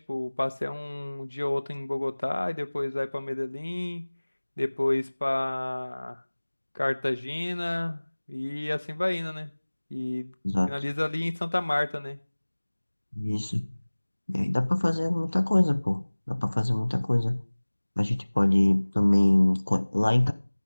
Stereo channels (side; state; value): both; inverted; correlation -1.00